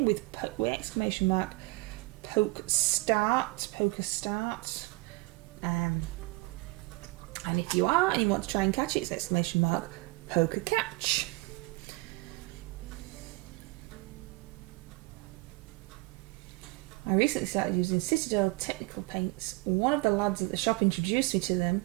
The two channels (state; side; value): quieter; left; 23.4 dB